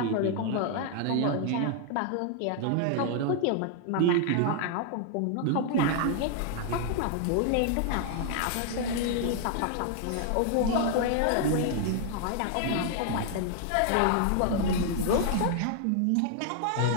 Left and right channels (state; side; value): different; both; correlation 0.00